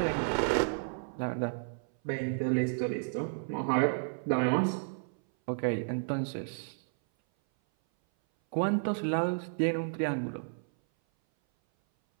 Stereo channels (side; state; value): left; silent; 56 dB below the other